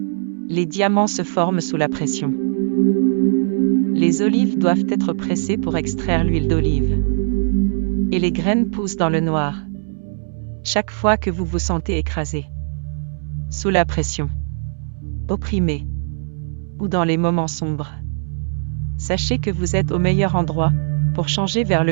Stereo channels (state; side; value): silent; left; 66 dB below the other